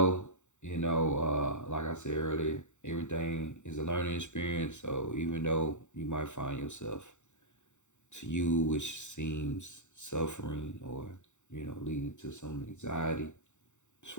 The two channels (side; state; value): right; late; 0.84 ms